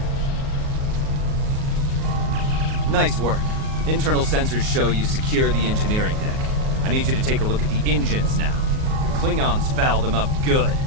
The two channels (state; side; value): late; left; 38 ms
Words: Nice work. Internal sensors show you secure the engineering deck. I need you to take a look at the engines now. The Klingons fouled them up good.